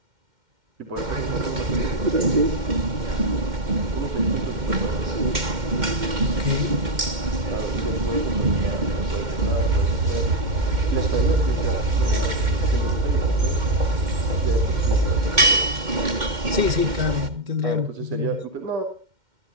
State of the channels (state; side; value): late; left; 2.1 ms